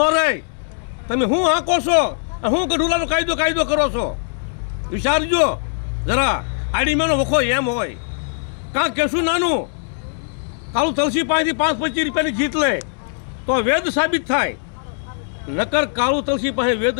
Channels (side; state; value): right; silent; 66 dB below the other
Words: રહે. તમે હું હાંકો છો, હું ગઢુલાનો કાયદો કરો છો? વિચારજો જરા. આડીમાનો વખો એમ હોય. કાં કેશું નાનું કાળુ તલસી પાસેથી 5-25 રૂપિયાની જીત લે તો વેદ સાબિત થાય. નકર કાળુ તલસી પાસે વેદ